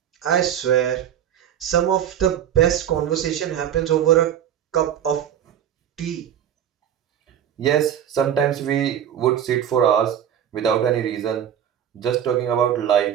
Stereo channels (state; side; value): quieter; left; 9.8 dB